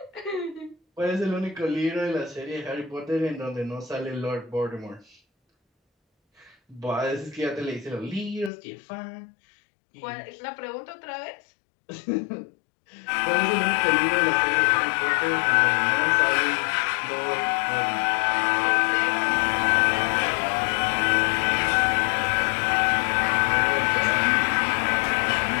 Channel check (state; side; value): drops out; right; at 8.5 s